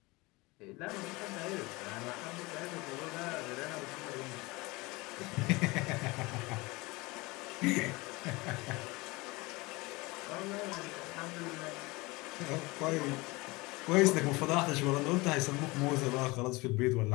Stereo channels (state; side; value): quieter; right; 23.5 dB